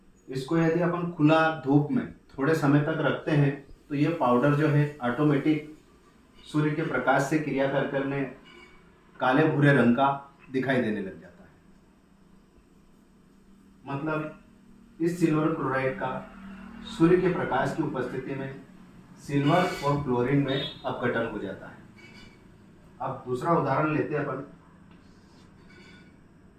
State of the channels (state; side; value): identical; both; correlation 1.00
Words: इसको यदि अपन खुला धूप में थोड़े समय तक रखते हैं तो ये पाउडर जो है ऑटोमेटिक सूर्य के प्रकाश से क्रिया कर करने काले भूरे रंग का दिखाई देने लग जाता है। मतलब इस सिल्वर क्लोराइड का सूर्य के प्रकाश की उपस्थिति में सिल्वर और क्लोरीन में अपघटन हो जाता है। अब दूसरा उदाहरण लेते हैं अपन।